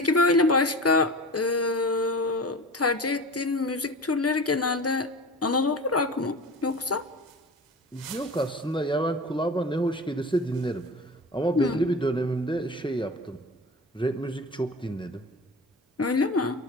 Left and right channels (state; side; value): normal; both; correlation 0.33